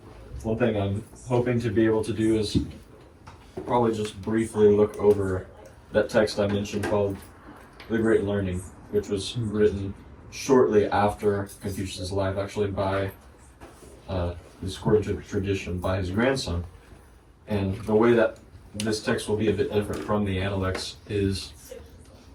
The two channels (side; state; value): both; identical; correlation 1.00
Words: One thing I'm hoping to be able to do is probably just briefly look over that text I mentioned called The Great Learning, which was written shortly after Confucius' life, actually by, according to tradition, by his grandson. And the way that this text will be a bit different from the Analects is